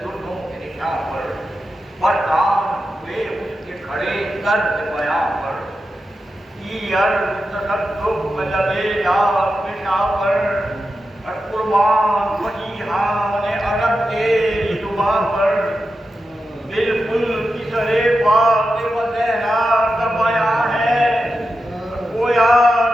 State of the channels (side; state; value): both; normal; correlation 0.90